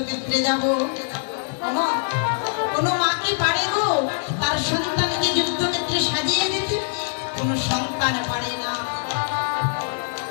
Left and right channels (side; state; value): right; silent; digital silence